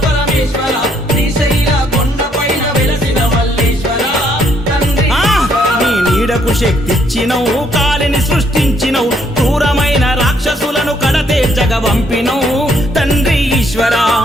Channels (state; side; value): normal; both; correlation 0.69